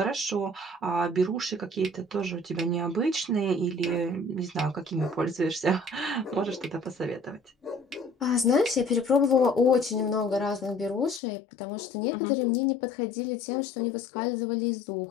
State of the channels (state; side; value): drops out; right; at 11.2 s